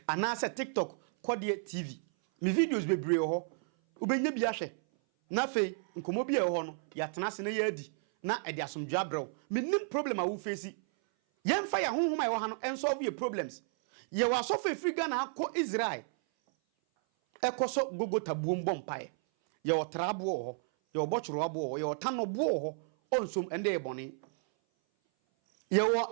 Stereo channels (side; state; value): left; silent; 56 dB below the other